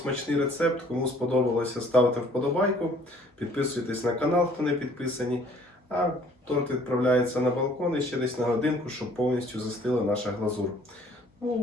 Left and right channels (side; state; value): both; normal; correlation 0.57